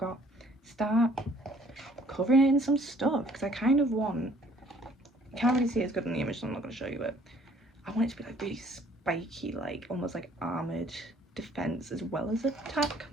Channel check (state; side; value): normal; both; correlation 0.59